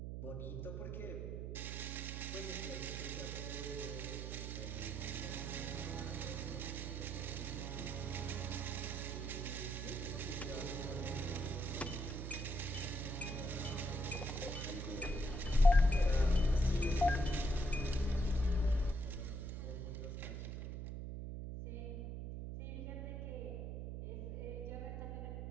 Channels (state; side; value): noise; right; hum, 5 dB below the sound